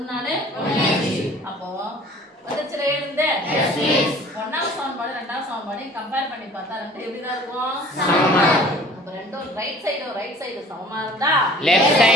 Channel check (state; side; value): normal; both; correlation 0.49